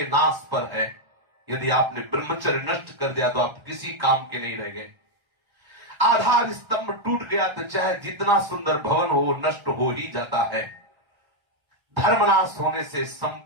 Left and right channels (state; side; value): late; left; 1.3 ms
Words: नाश पर है। यदि आपने ब्रह्मचर्य नष्ट कर दिया तो आप किसी काम के नहीं रह गए। आधार स्तंभ टूट गया तो चाहे जितना सुंदर भवन हो नष्ट हो ही जाता है। धर्मनाश होने से